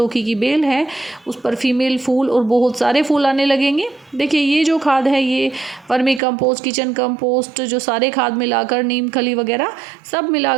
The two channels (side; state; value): left; drops out; at 6.2 s